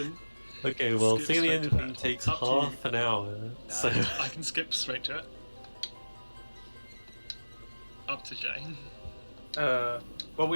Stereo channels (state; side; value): inverted; both; correlation -1.00